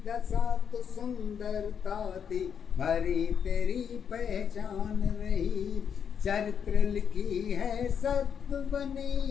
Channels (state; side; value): quieter; right; 7.5 dB